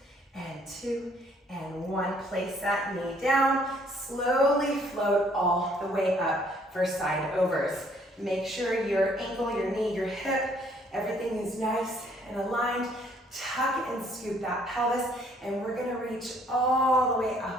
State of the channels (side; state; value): both; normal; correlation 0.63